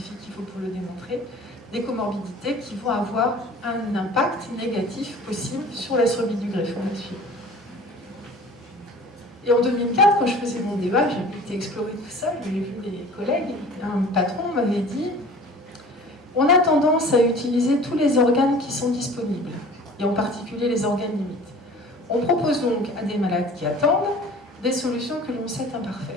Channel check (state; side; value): normal; both; correlation 0.44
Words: qu'il faut pour le démontrer, des comorbidités qui vont avoir un impact négatif possible sur la survie du greffon. Et en 2004, quand je faisais mon débat, j'ai été explorer tout ça, j'ai vu les collègues, un patron m'avait dit « On a tendance à utiliser tous les organes qui sont disponibles, et en particulier les organes limites. On propose donc à des malades qui attendent des solutions que l'on sait